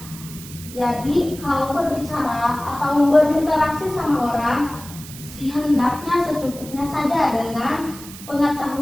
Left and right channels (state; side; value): noise; right; hiss, 15 dB below the sound